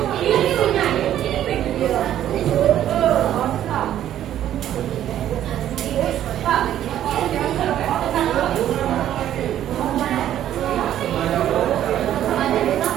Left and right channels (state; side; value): quieter; left; 11.5 dB